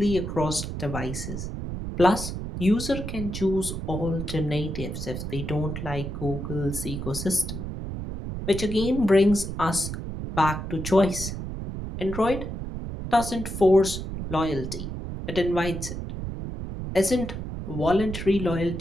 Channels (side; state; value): right; noise; rumble, 6 dB below the sound